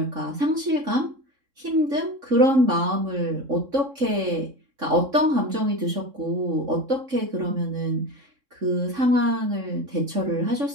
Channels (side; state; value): left; late; 3.6 ms